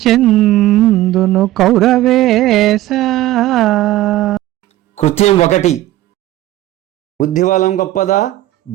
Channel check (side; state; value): left; quieter; 15.4 dB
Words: చెందును కౌరవేశ. కృత్యం 1. బుద్ధిబలం గొప్పదా,